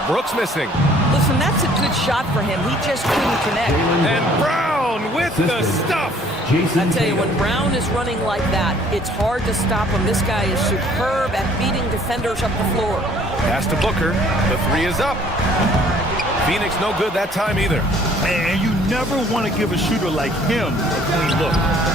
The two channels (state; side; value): normal; both; correlation 0.57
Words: Brooks missing. Listen, that's a good shot for him. He just couldn't connect. And Brown with the stuff. I tell you, when Brown is running like that, it's hard to stop him. This guy is superb at beating defenders up the floor. Pass to Booker. The three is up. Phoenix no good that time either. And you never want to give a shooter like him a clean look.